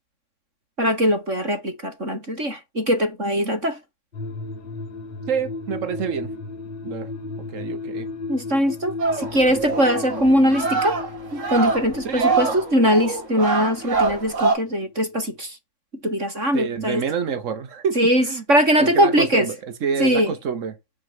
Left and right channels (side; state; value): left; late; 3.6 ms